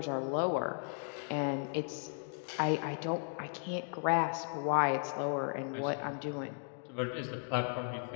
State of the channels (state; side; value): silent; right; 54 dB below the other